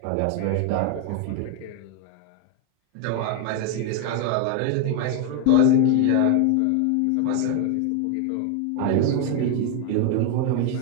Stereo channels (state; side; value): different; both; correlation 0.01